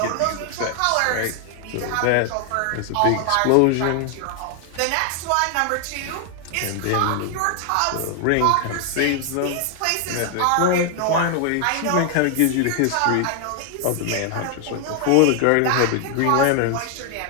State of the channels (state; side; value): different; both; correlation 0.00